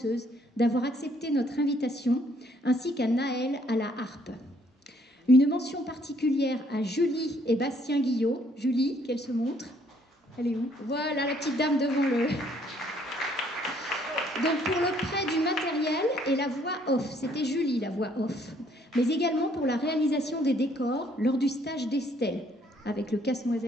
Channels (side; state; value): both; normal; correlation 0.65